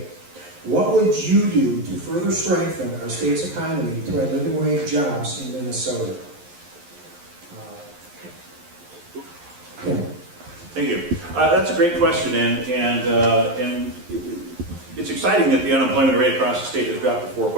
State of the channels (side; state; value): left; late; 11 ms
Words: What would you do to further strengthen our state's economy to add living wage jobs in Minnesota? Thank you. That's a great question, and it's exciting that the unemployment rate across the state has dropped to